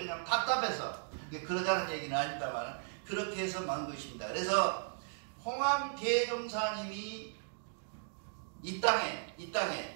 답답해서. 그러자는 얘기는 아닙니다만 그렇게 해서 만든 것입니다. 그래서 홍암 대종사님이 이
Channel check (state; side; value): silent; left; digital silence